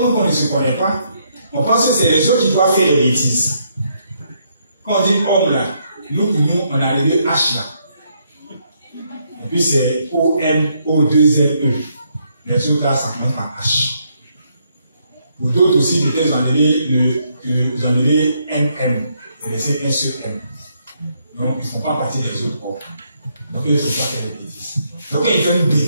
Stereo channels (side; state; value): both; inverted; correlation -0.74